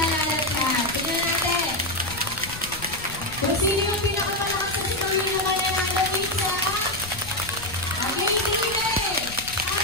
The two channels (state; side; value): noise; left; rumble, 15 dB below the sound